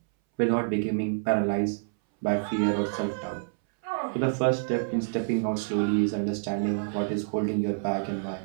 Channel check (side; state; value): left; silent; 60 dB below the other